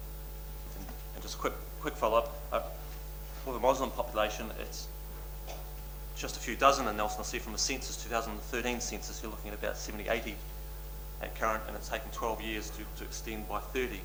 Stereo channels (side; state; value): both; identical; correlation 1.00